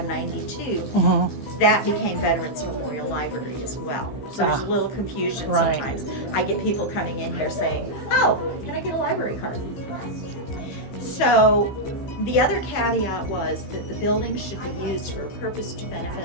that became Veterans Memorial Library as well. So there's a little confusion sometimes. I get people coming in here saying, oh, can I get a library card? So the other caveat was that the building should be used for a purpose to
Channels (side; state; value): right; late; 15 ms